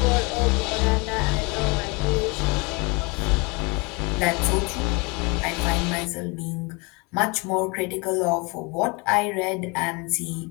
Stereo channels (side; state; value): right; quieter; 28.7 dB